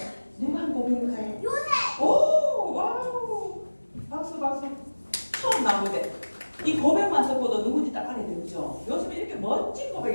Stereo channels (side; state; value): both; inverted; correlation -1.00